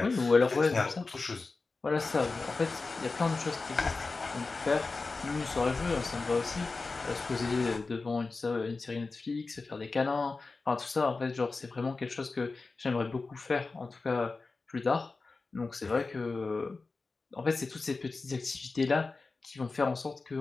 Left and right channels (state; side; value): quieter; right; 3.9 dB